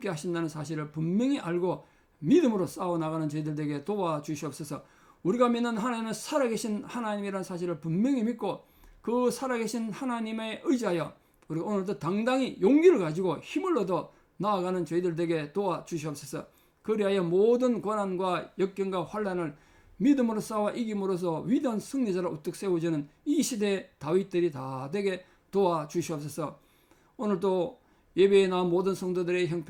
하신다는 사실을 분명히 알고 믿음으로 싸워나가는 저희들에게 도와주시옵소서. 우리가 믿는 하나님은 살아계신 하나님이라는 사실을 분명히 믿고 그 살아계신 하나님에 의지하여 우리가 오늘도 당당히 용기를 가지고 힘을 얻어 나아가는 저희들에게 도와주시옵소서. 그리하여 모든 고난과 역경과 환난을 믿음으로 싸워 이김으로써 위대한 승리자로 우뚝 세워지는 이 시대의 다윗들이 다 되게 도와주시옵소서. 오늘도 예배에 나온 모든 성도들의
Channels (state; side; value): identical; both; correlation 1.00